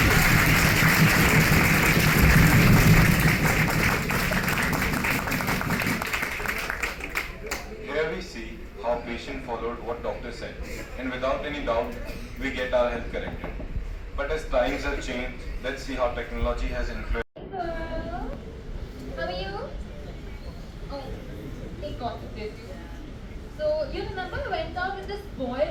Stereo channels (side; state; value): both; identical; correlation 1.00